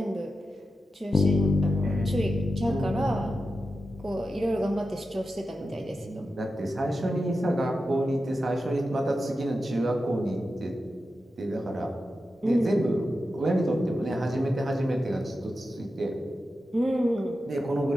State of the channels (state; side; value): normal; both; correlation 0.90